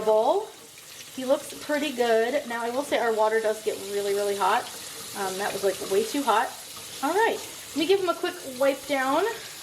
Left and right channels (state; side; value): identical; both; correlation 1.00